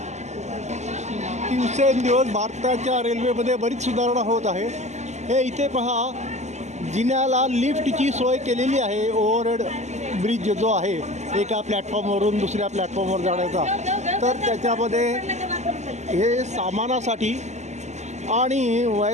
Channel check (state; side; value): late; left; 0.33 ms